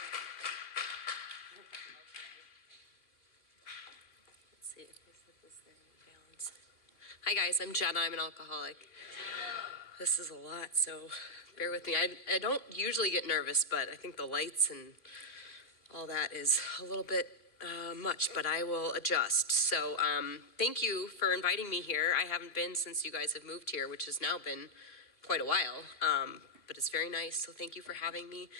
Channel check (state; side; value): late; right; 2.1 ms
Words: Let's see if this thing balanced. Hi guys, I'm Jenna. I'm an alcoholic. This is a lot, so bear with me. I don't usually get nervous, but I think the lights and all that is a little bit much, but I will adjust. So thank you for inviting me here. I haven't been since you guys have moved here, which has now been quite a while, but it's very nice. So thank you for having me.